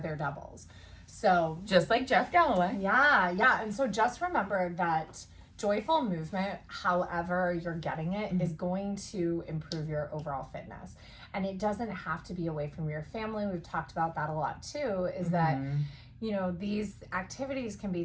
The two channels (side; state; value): both; identical; correlation 1.00